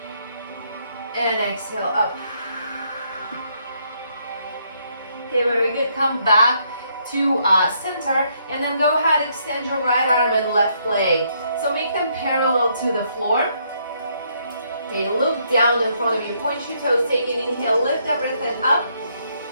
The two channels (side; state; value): both; inverted; correlation -0.72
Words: And exhale, up. Okay, very good. Come back to center, and then go ahead, extend your right arm and left leg. So make them parallel to the floor. Okay, look down in front of you. Point your toes, take an inhale, lift everything up.